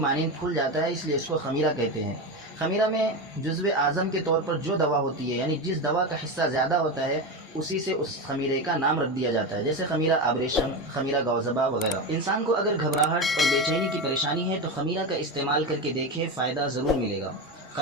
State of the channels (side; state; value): both; normal; correlation 0.18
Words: پھول جاتا ہے، اس لیے اس کو خمیرہ کہتے ہیں۔ خمیرہ میں جزو اعظم کے طور پر جو دوا ہوتی ہے یعنی جس دوا کا حصہ زیادہ ہوتا ہے اسی سے اس خمیرے کا نام رکھ دیا جاتا ہے، جیسے خمیرہ آبریشم، خمیرہ گوزبا وغیرہ۔ انسان کو اگر گھبراہٹ اور بے چینی کی پریشانی ہے تو خمیرہ کا استعمال کر کے دیکھے، فائدہ ضرور ملے گا۔